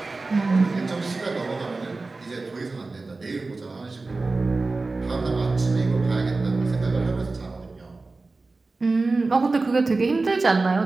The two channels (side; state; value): left; quieter; 3.6 dB